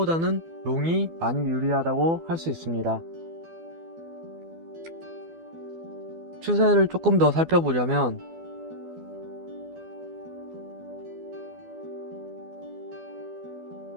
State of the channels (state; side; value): late; left; 12 ms